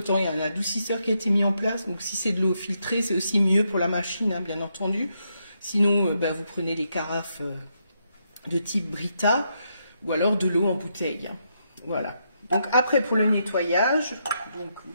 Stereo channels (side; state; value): both; inverted; correlation -0.80